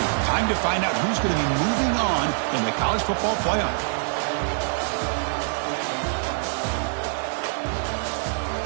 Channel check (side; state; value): left; silent; 61 dB below the other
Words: Time to find out who's going to be moving on in the college football playoff.